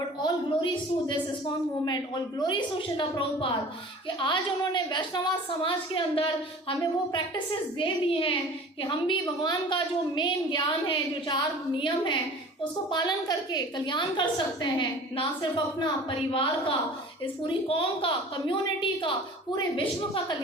all glories to this ISKCON movement, all glories to Srila Prabhupada कि आज उन्होंने वैष्णव समाज के अंदर हमें वो प्रैक्टिसेस दे दी हैं कि हम भी भगवान का जो मेन ज्ञान है, जो 4 नियम हैं, उसको पालन करके कल्याण कर सकते हैं। ना सिर्फ अपना परिवार का, इस पूरी कौम का, कम्युनिटी का, पूरे विश्व का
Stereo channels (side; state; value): both; normal; correlation 0.43